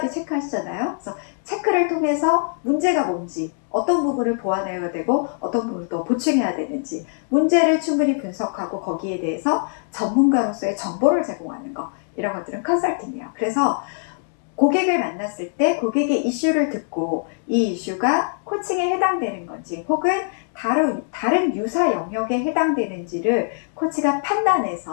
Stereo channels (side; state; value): right; silent; 64 dB below the other